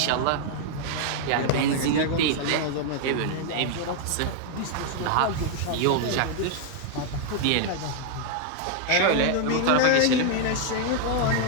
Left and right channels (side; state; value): both; different; correlation 0.00